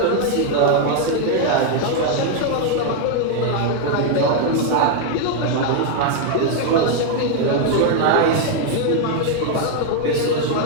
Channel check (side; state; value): both; different; correlation 0.00